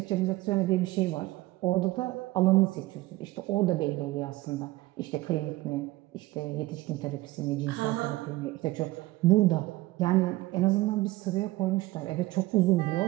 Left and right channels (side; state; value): left; quieter; 19.0 dB